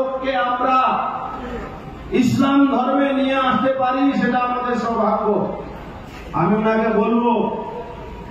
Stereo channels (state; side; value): identical; both; correlation 1.00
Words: আমরা ইসলাম ধর্মে নিয়ে আসতে পারি সেটা আমাদের সৌভাগ্য। আমি ওনাকে বলবো,